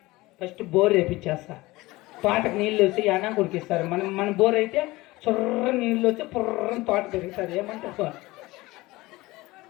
First bore వేపించేస్తా. తోటకు నీళ్ళు వచ్చి అనా కురికిస్తారు. మన బోర్ అయితే చొర్ర నీళ్ళు వచ్చి పుర్రని తోట పెరుగుతుంది. ఏమంటారు?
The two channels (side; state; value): right; quieter; 20.2 dB